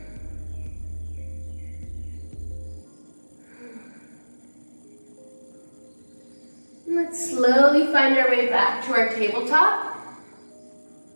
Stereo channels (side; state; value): both; inverted; correlation -1.00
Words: slowly find our way back to our tabletop.